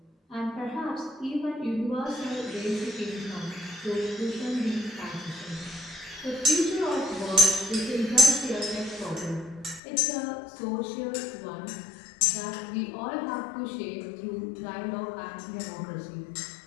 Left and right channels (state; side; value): drops out; right; at 9.8 s